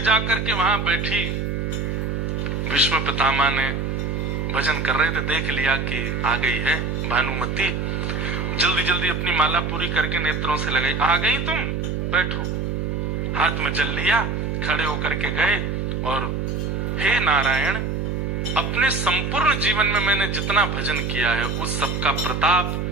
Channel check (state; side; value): noise; right; hum, 1 dB below the sound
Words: जाकर के वहां बैठी, भीष्म पितामह ने भजन कर रहे थे, देख लिया कि आ गई है भानुमति। जल्दी जल्दी अपनी माला पूरी करके नेत्रों से लगाई। आ गई तुम, बैठो। हाथ में जल लिया, खड़े होकर के गए, और हे नारायण, अपने संपूर्ण जीवन में मैंने जितना भजन किया है उस सबका प्रताप